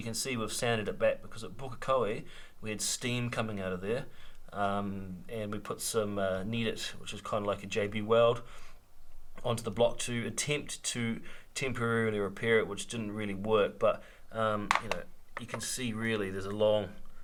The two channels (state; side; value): identical; both; correlation 1.00